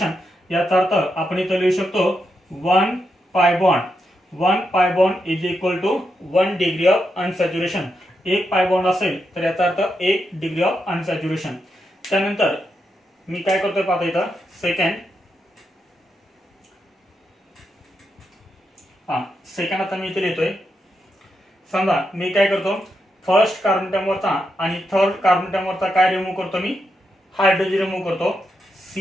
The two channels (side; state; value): both; normal; correlation 0.84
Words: याचा अर्थ आपण इथं लिहू शकतो 1 pi bond. 1 pi bond is equal to 1 degree of unsaturation. एक पाय बॉन्ड असेल तर याचा अर्थ 1 डिग्री ऑफ अनसॅच्युरेशन. त्यानंतर मी काय करतोय पाहता इथं सेकंड आता मी इथे लिहितोय. समजा मी काय करतो, फर्स्ट कार्बन अटॉम वरचा आणि थर्ड कार्बन अटॉम वरचा काय रिमूव्ह करतो, मी हायड्रोजन रिमूव्ह करतो.